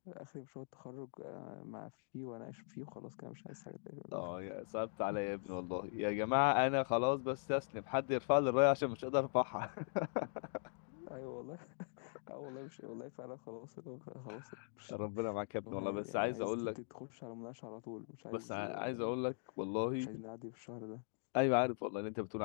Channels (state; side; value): silent; right; digital silence